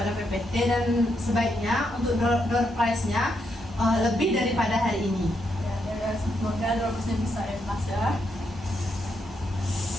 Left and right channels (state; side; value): normal; both; correlation 0.80